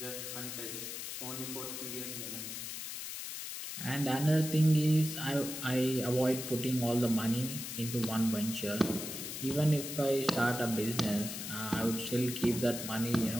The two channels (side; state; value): left; noise; hiss, 7 dB below the sound